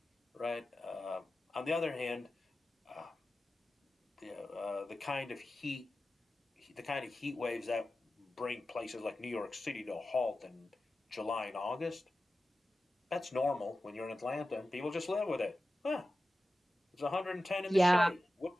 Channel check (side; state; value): both; normal; correlation 0.94